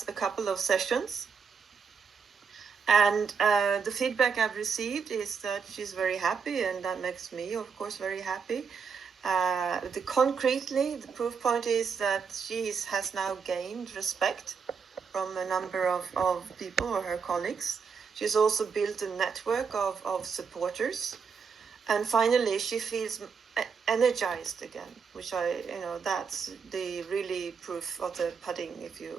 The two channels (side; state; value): left; quieter; 5.9 dB